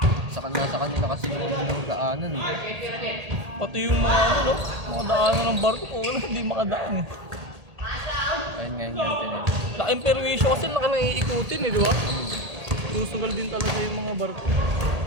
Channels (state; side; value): late; left; 1.8 ms